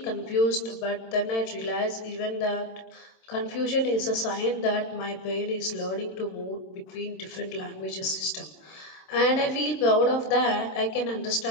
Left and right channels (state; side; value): late; right; 27 ms